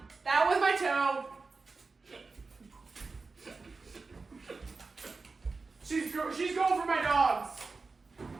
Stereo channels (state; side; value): quieter; left; 4.1 dB